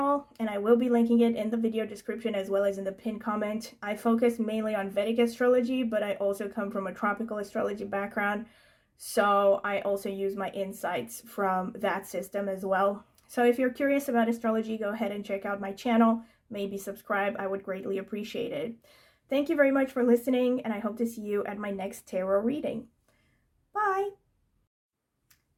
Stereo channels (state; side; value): identical; both; correlation 1.00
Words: and I will be linking it in the video description as well as in the pinned comment. I focus mainly on Vedic astrology, but I also come from a tropical astrology background, so I also use my insights from that system as well. So if you're curious about astrology, go ahead and check out my channel. Maybe subscribe. I would greatly appreciate it. Thank you very much for listening, and I hope to see you at my next tarot reading. Bye!